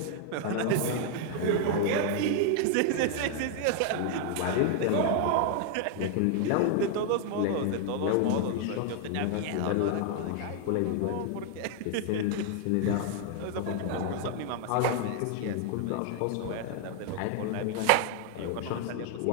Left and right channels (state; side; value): different; both; correlation 0.00